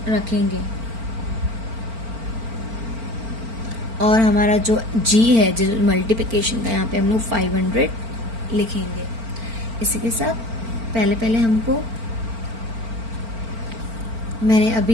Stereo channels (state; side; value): late; left; 4.4 ms